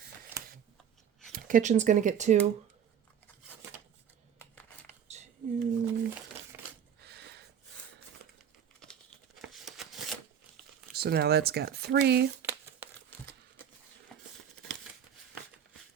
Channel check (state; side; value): quieter; left; 8.6 dB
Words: Kitchen's going to get 2. 2. So now that's got 3.